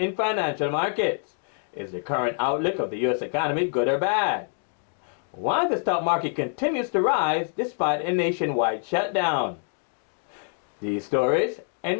financial markets? Is the current outlook of the U.S. economy good or bad? Why the stock market continues to rise despite a nationwide shutdown? These stories and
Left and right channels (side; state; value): right; silent; 61 dB below the other